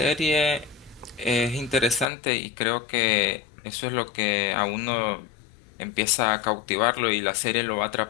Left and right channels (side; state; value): right; drops out; at 2.1 s